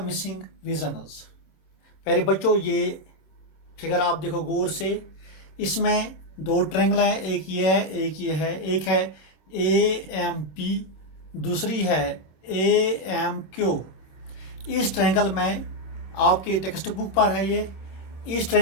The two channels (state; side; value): late; right; 26 ms